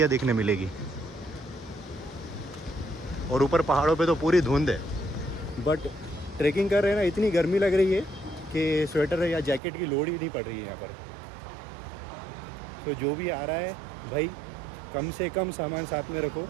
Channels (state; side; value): drops out; left; at 9.6 s